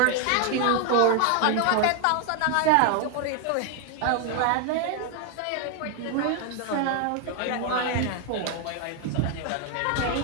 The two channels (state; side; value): different; both; correlation 0.01